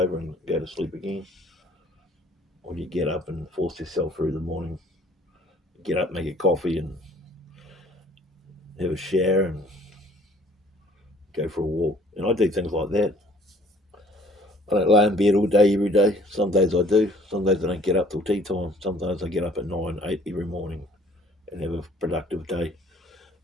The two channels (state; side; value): normal; both; correlation 0.57